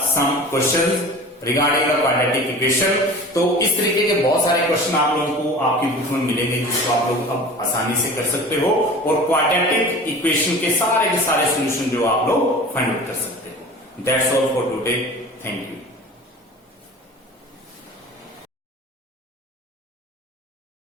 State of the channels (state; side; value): normal; both; correlation 0.38